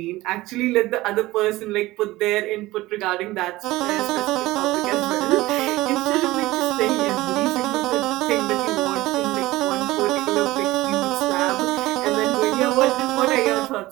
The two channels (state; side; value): quieter; left; 18.4 dB